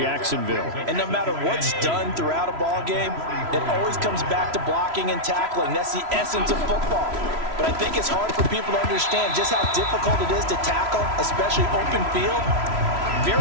And no matter what's done throughout a ball game, it always comes back to blocking and tackling. That's the essence of football. But I think it's hard for people to understand just how difficult it is to tackle, especially open field.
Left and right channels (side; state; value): left; late; 3.0 ms